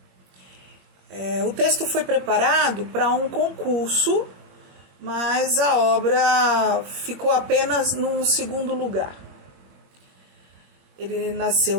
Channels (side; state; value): left; late; 21 ms